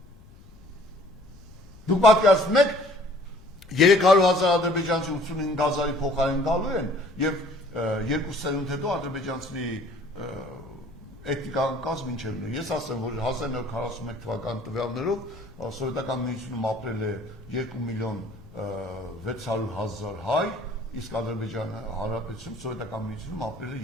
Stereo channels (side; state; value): left; noise; rumble, 21 dB below the sound